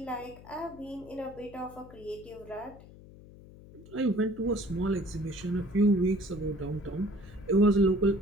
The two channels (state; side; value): noise; left; hum, 19 dB below the sound